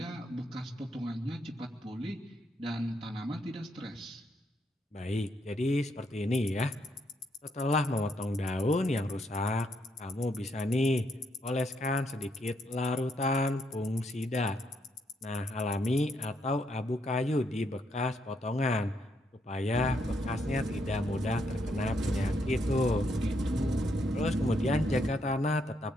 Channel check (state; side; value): normal; both; correlation 0.75